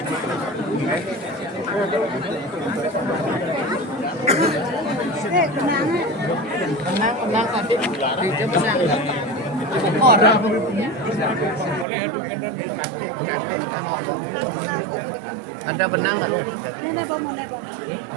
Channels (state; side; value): drops out; left; at 11.9 s